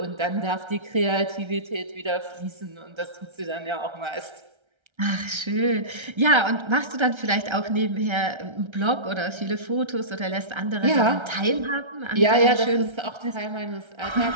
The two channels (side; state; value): left; late; 1.3 ms